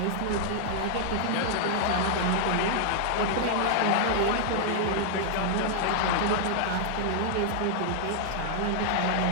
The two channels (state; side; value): different; both; correlation -0.01